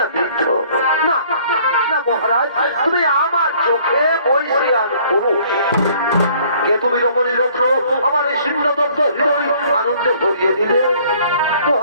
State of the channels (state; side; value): inverted; both; correlation -0.58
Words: বৃদ্ধ না, না মহারাজ, তুমি আমার চোখে বৈশিয়ান পুরুষ। কে তুমি রমণী রত্ন, আমার এই শীর্ণ দগ্ধ হৃদয় আনন্দে ভরিয়ে দিলে।